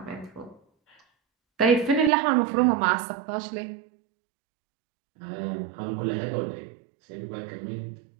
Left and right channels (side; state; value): left; drops out; at 2.1 s